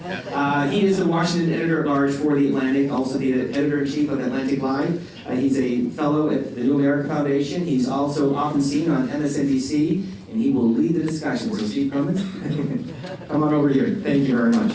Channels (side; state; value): both; identical; correlation 1.00